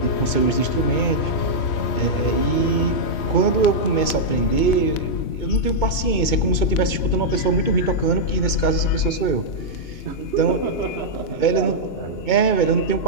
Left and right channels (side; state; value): right; late; 2.2 ms